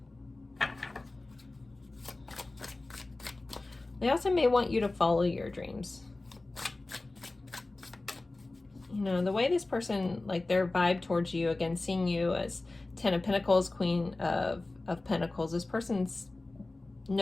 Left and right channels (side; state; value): right; quieter; 3.1 dB